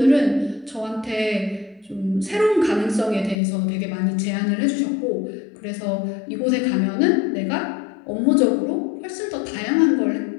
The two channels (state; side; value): drops out; right; at 3.4 s